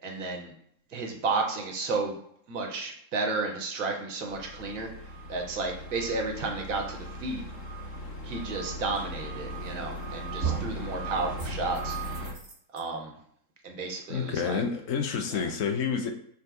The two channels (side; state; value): right; late; 3.7 ms